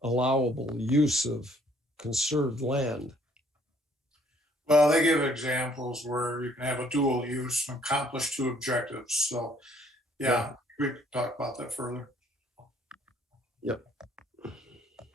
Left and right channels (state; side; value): normal; both; correlation 0.62